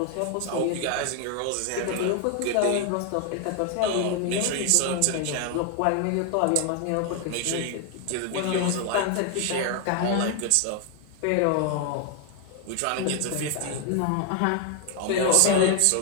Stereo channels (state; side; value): different; both; correlation 0.00